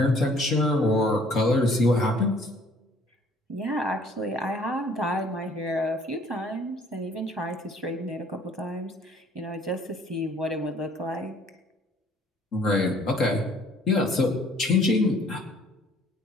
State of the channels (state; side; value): normal; both; correlation 0.58